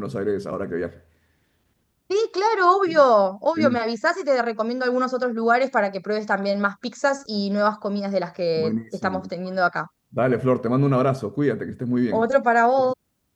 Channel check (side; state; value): both; identical; correlation 1.00